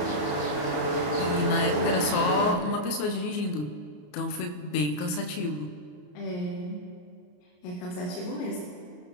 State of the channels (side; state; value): right; late; 34 ms